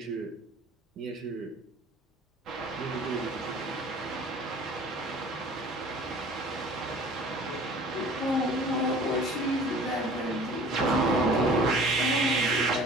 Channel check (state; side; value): normal; both; correlation 0.46